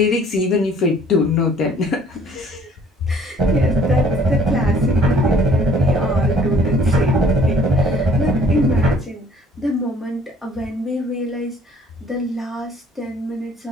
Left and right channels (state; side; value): normal; both; correlation 0.56